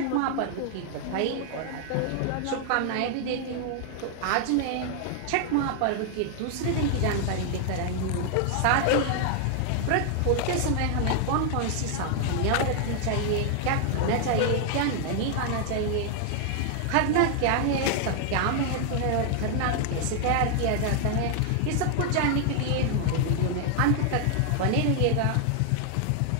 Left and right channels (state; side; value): different; both; correlation 0.00